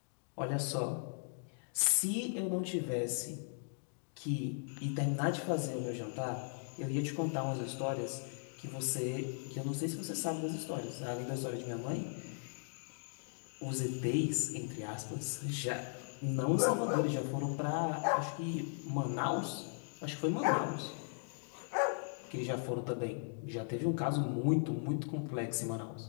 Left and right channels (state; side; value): silent; right; digital silence